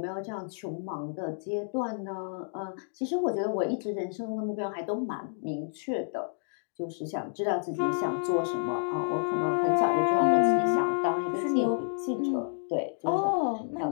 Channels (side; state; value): right; silent; digital silence